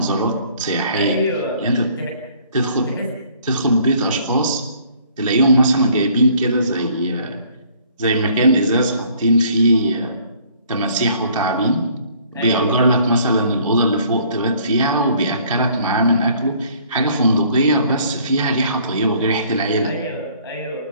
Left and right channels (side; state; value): both; inverted; correlation -0.59